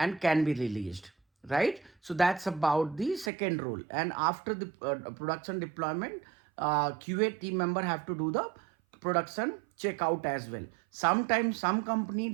can be released, right? So that's about the second role. And after the production deployment, QA team member have to do the production checkout as well. Sometimes some company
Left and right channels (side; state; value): left; drops out; at 3.3 s